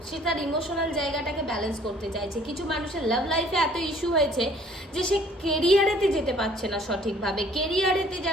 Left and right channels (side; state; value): both; normal; correlation 0.57